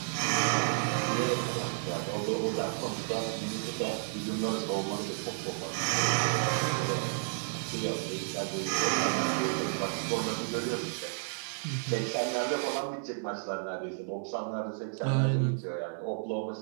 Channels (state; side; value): silent; left; 57 dB below the other